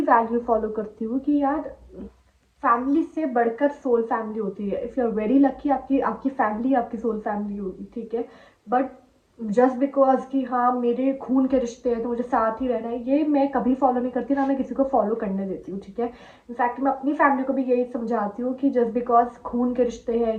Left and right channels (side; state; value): both; identical; correlation 1.00